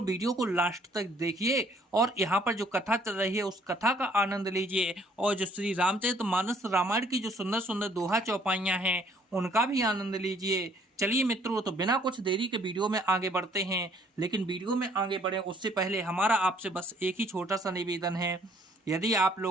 वीडियो को लास्ट तक देखिए और यहाँ पर जो कथा चल रही है उस कथा का आनंद लीजिए और जो श्री रामचरितमानस रामायण की जो सुंदर सुंदर दोहा चौपाइयाँ हैं उनका भी आनंद लीजिए। चलिए मित्रों, तो बिना कुछ देरी के वीडियो में आगे बढ़ते हैं। लेकिन वीडियो में आगे बढ़े उससे पहले हमारा आपसे बस एक ही छोटा सा निवेदन है। यदि आप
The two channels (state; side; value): normal; both; correlation 0.62